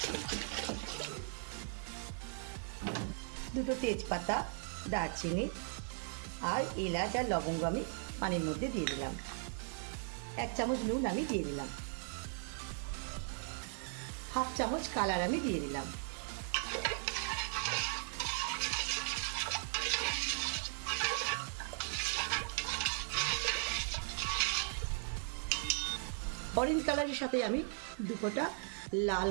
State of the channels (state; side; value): silent; left; 52 dB below the other